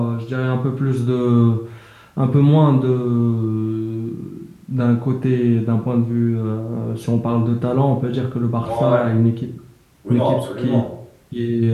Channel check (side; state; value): both; identical; correlation 1.00